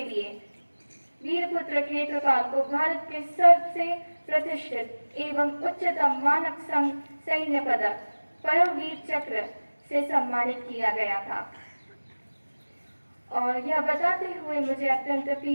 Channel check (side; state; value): both; inverted; correlation -1.00